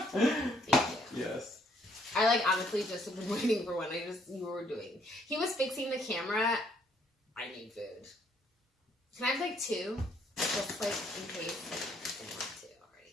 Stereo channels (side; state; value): both; normal; correlation 0.68